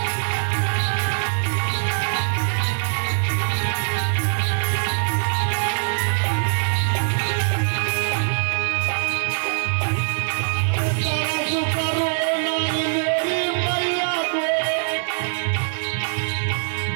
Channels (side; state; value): left; silent; digital silence